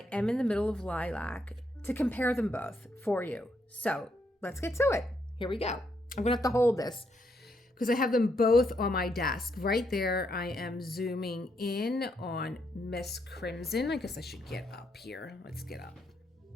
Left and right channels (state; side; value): normal; both; correlation 0.77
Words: am in the middle of Lilac to compare them both for you. So let's get to it. Here we go. I'm gonna have to hold this because I have them both on my desk. Right there, I am zooming in on Miss Crimson. I guess I should get up here. Let's get up.